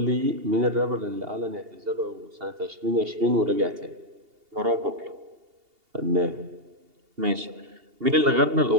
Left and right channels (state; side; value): late; left; 2.8 ms